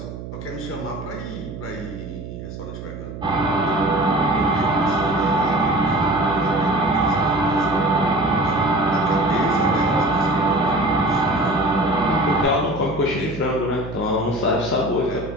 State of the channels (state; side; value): noise; right; hum, 10 dB below the sound